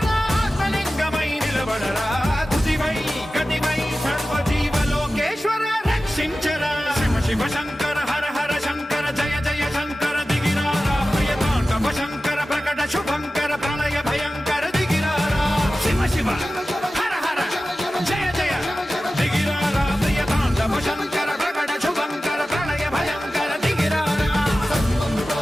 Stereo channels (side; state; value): both; normal; correlation 0.95